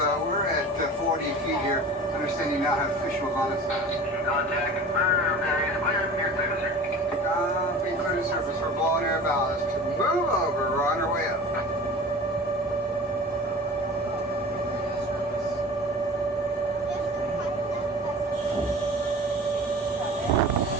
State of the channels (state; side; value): normal; both; correlation 0.38